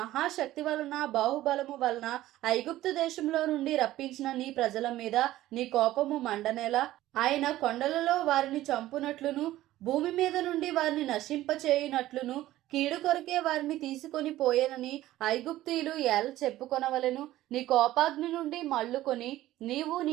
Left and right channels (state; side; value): quieter; left; 15.1 dB